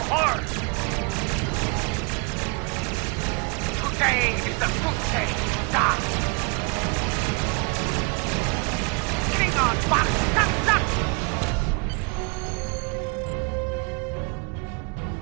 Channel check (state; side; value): quieter; left; 33.3 dB